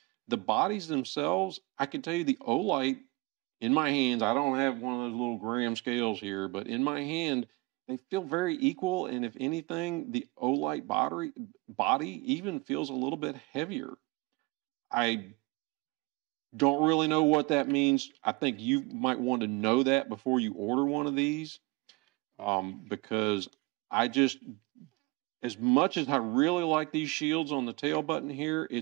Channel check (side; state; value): left; quieter; 24.6 dB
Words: The bodies themselves, I can tell you the Olight in my hands, I don't have one of those little gram scales here, but in my hand, they feel very equal. And if anything, the Olight body even feels a little bit heavier. I don't really know what that means. I think you might want to know that before you order one of these, because I just, as much as I really like these shields on the tail button here,